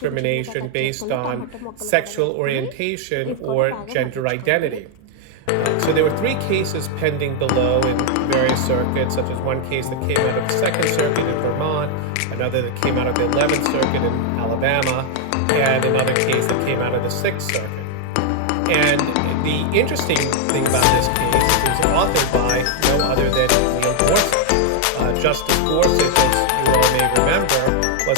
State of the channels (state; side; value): different; both; correlation 0.00